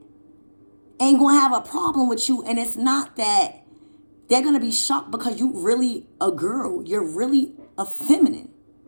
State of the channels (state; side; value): inverted; both; correlation -1.00